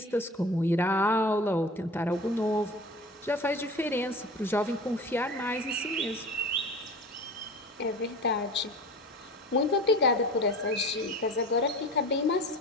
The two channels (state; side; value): normal; both; correlation 0.37